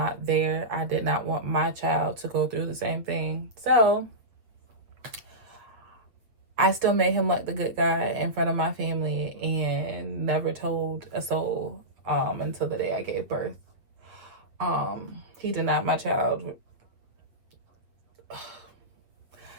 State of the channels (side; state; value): left; late; 8.1 ms